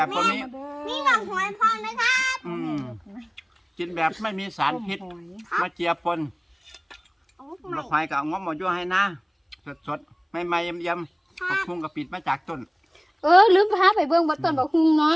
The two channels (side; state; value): both; identical; correlation 1.00